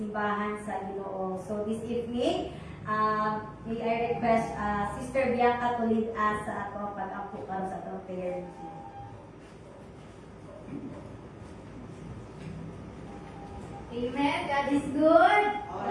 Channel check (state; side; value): identical; both; correlation 1.00